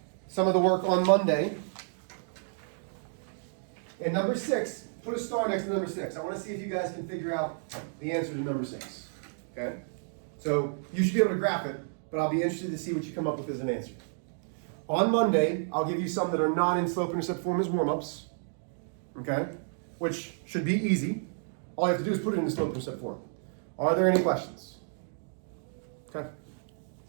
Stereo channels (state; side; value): silent; left; digital silence